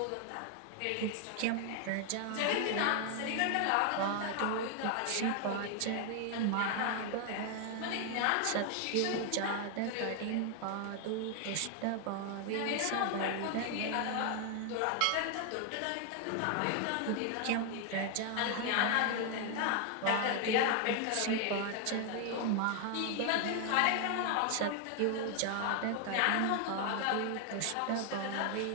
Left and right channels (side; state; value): both; different; correlation 0.00